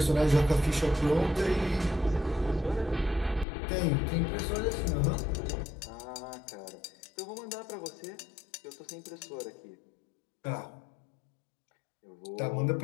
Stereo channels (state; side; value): drops out; right; at 3.5 s